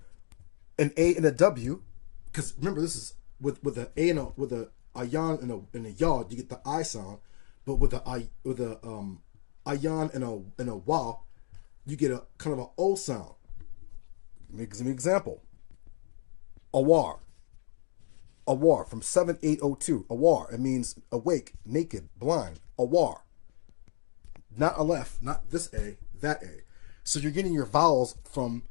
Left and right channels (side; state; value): right; silent; digital silence